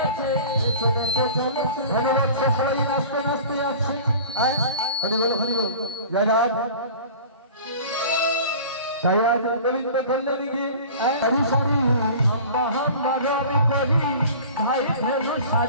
চলেছে ধন্যবাদ। সবাই নাচতে নাচতে যাচ্ছে হরিবল হরিবল জয় রাধা। তাই আজ গোবিন্দ কল্যাণী গিয়ে হরি সরি হাম্বা হাম্বা রবি করি ভাই ভেলো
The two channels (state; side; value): inverted; both; correlation -0.41